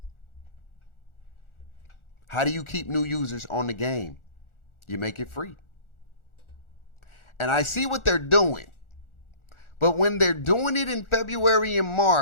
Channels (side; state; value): right; late; 1.4 ms